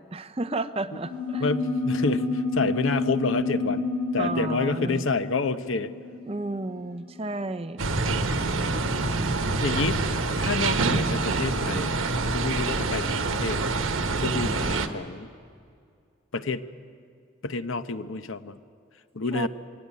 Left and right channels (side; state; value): both; normal; correlation 0.31